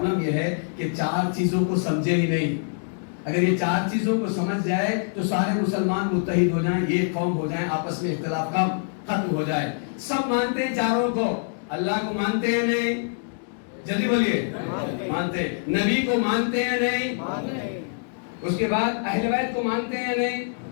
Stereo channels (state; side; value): silent; right; digital silence